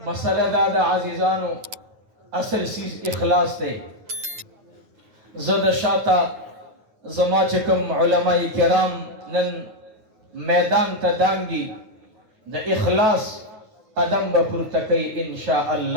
مسئلہ دادا عزیزانو اصل چیز اخلاص تے زد شاتا زما چکم علماء کرام نن میدان تا دانگی دا اخلاص قدم بپرتکی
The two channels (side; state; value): left; late; 9.4 ms